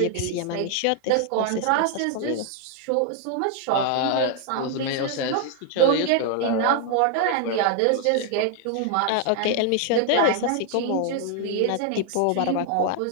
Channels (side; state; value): both; different; correlation 0.00